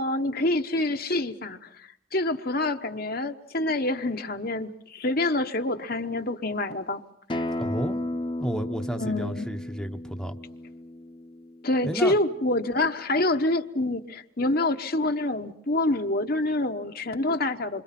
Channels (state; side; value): normal; both; correlation 0.32